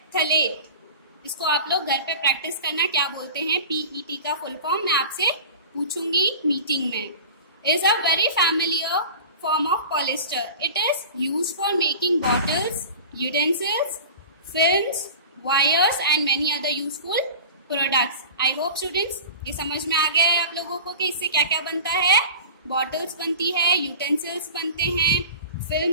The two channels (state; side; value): inverted; both; correlation -0.36